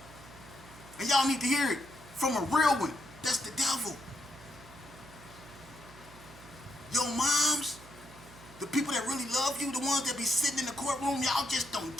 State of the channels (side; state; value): right; noise; hum, 20 dB below the sound